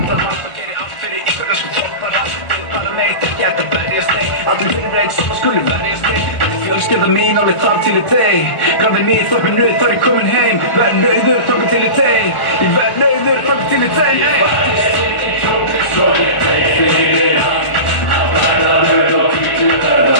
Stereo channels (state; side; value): late; right; 1.5 ms